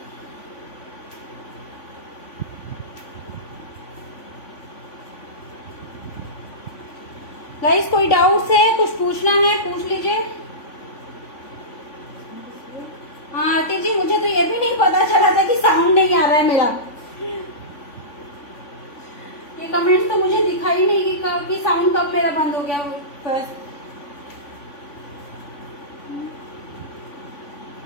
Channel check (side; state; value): right; late; 3.5 ms